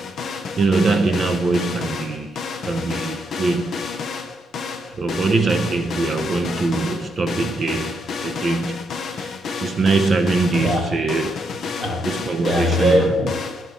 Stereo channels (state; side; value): normal; both; correlation 0.79